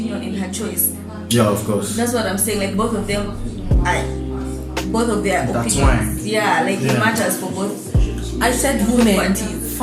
and her choice. Yeah, of course. That's what I'm saying. Like both of them, both of their That's opinions. Yeah, like Yeah. it matters for both. I said women Parties.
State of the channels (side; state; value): both; identical; correlation 1.00